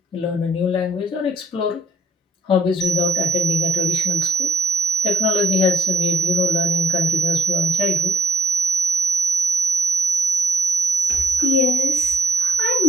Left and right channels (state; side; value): normal; both; correlation 0.71